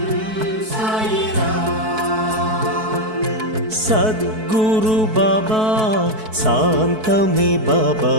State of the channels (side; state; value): left; late; 4.6 ms